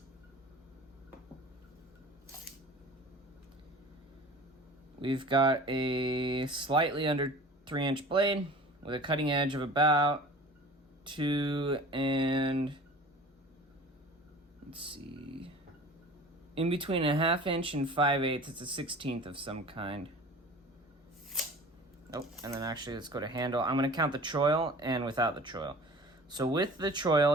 We've got a slightly under 3-inch blade with a cutting edge of about 2 and... let's see, in between a 1/2 inch and 5/8, it's a 1/16 of some kind. Oh, and then actually let's go to handle. I'm going to count the choil and without the choil. So with the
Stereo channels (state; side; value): normal; both; correlation 0.42